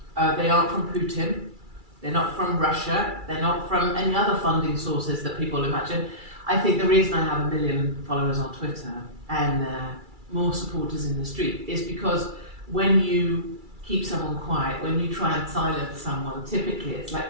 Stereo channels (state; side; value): late; left; 2.3 ms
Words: They aren't from Putin. They're not from Russia. They're not from any other funding sources that people imagine. I think the reason I have 1 million followers on Twitter and more supporters in the street is because when you keep someone quiet, when you try and silence someone, typically it's